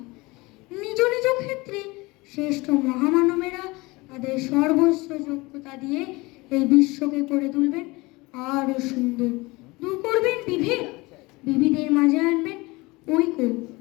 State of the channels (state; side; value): quieter; right; 23.1 dB